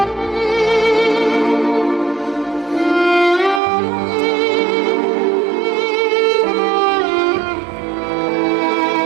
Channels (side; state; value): left; drops out; at 3.6 s